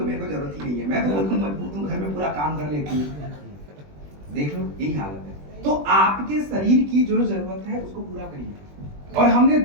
मेरे को जरूरत ही नहीं है, मैं तो बिल्कुल मजबूत हूँ, घर में पूरा काम कर लेती हूँ। देख लो, यही हालत है। तो आपके शरीर की जो जरूरत है उसको पूरा करिए, और हमने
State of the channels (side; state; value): left; late; 20 ms